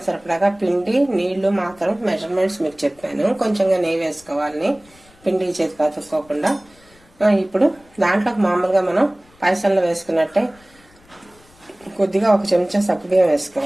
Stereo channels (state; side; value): noise; left; rumble, 29 dB below the sound